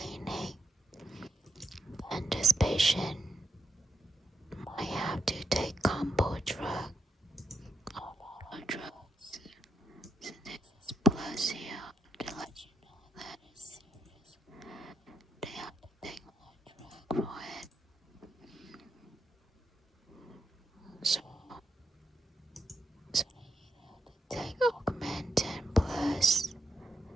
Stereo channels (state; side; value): normal; both; correlation 0.82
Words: and this patient might have to take combo drug, a lot of drugs. So this is plus here to let you know that it's serious. They have to take more drug for it. So they take Augmentin plus